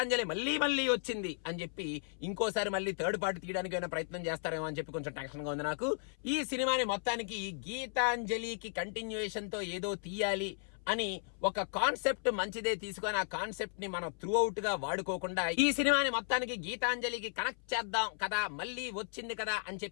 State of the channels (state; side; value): silent; right; 54 dB below the other